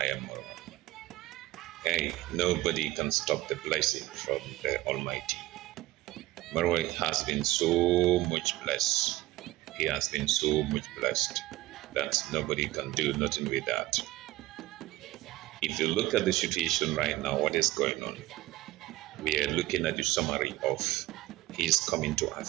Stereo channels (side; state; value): left; quieter; 17.1 dB